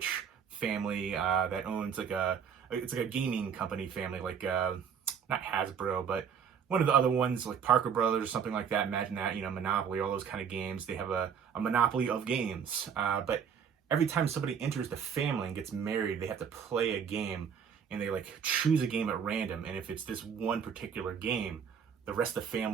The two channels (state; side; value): quieter; left; 7.3 dB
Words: family that owns it's like a gaming company family, not Hasbro, but one of the other ones, like Parker Brothers or something like that. Imagine that, Monopoly, all those kind of games. They have a monopoly of games. But every time somebody enters the family and gets married, they have to play a game, and they like choose a game at random. And if it's this one particular game, the rest of the